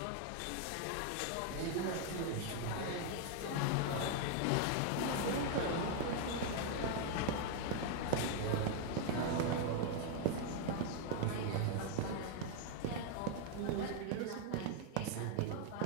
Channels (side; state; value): both; different; correlation 0.00